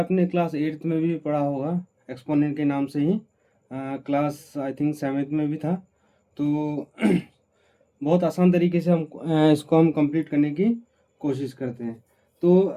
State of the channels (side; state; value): both; identical; correlation 1.00